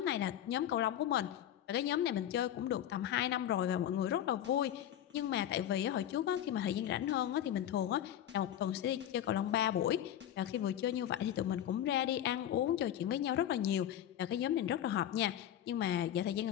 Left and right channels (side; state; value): right; quieter; 11.2 dB